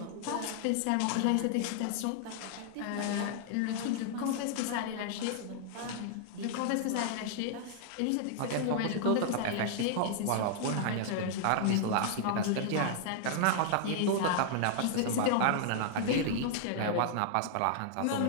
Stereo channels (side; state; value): both; different; correlation -0.01